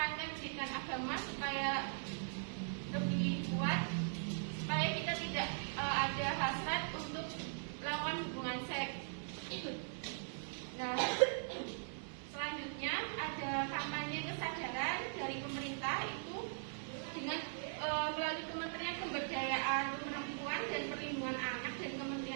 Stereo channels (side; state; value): left; silent; 51 dB below the other